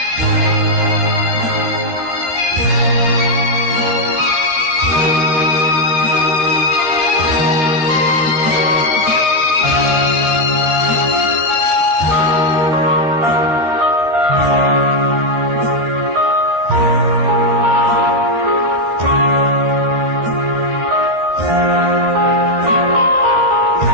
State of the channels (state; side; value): late; left; 13 ms